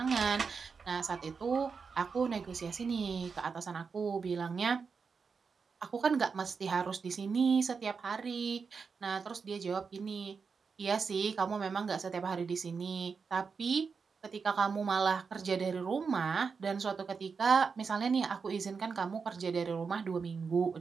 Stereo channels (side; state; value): left; quieter; 5.4 dB